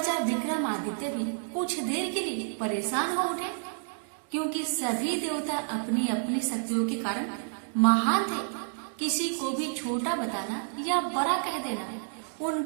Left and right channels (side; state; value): left; silent; digital silence